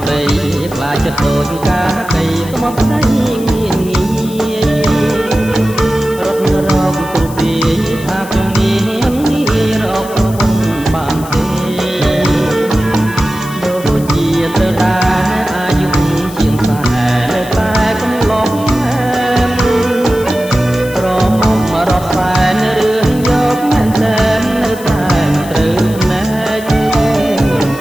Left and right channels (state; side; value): noise; left; hiss, 17 dB below the sound